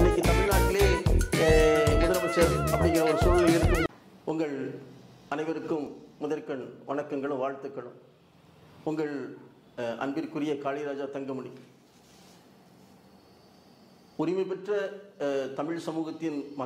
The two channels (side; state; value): both; identical; correlation 1.00